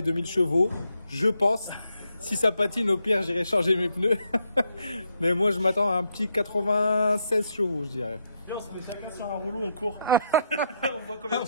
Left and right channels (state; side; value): inverted; both; correlation -0.78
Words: 2000 chevaux. Je pense. Si ça patine, au pire, j'irai changer mes pneus. Mais moi, je m'attends à un petit 96 chevaux, je dirais. On se met chacun sur un rouleau, on court. On voit combien de